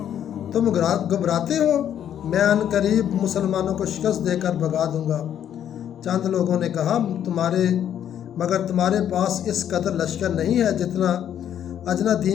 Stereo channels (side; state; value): right; quieter; 9.9 dB